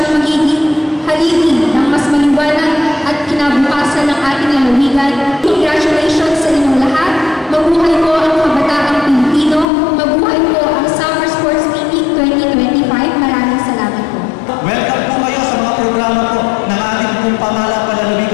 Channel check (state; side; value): drops out; right; at 9.7 s